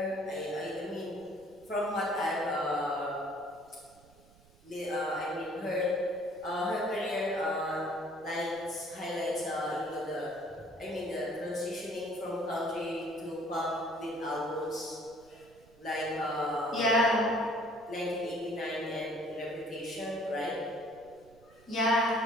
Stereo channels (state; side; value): noise; right; rumble, 27 dB below the sound